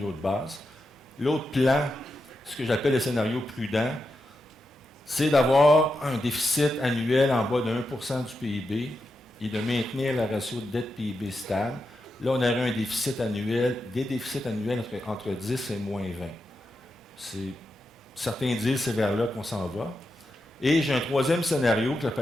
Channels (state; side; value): normal; both; correlation 0.87